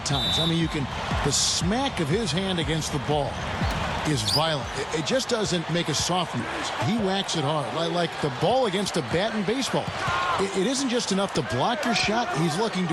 times. I mean, the smack of his hand against the ball is violent. It just doesn't make a soft noise. He whacks it hard, like the ball against a bat in baseball. It isn't just enough to block your shot. He's looking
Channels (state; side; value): identical; both; correlation 1.00